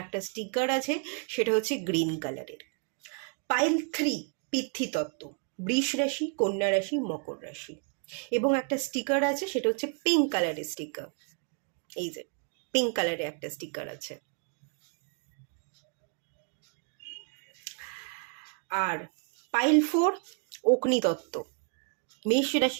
একটা স্টিকার আছে, সেটা হচ্ছে গ্রিন কালারের। পাইল 3 পিতৃতত্ত্ব, বৃষ রাশি, কন্যা রাশি, মকর রাশি এবং একটা স্টিকার আছে, সেটা হচ্ছে পিঙ্ক কালারের স্টিকার। এই যে পিঙ্ক কালারের একটা স্টিকার আছে। আর পাইল 4 অগ্নিতত্ত্ব, মেষ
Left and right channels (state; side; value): quieter; left; 39.9 dB